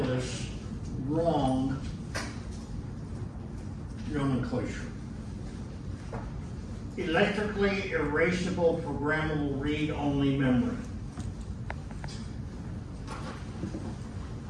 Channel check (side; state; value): both; identical; correlation 1.00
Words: wrong nomenclature. Electrically erasable programmable read-only memory.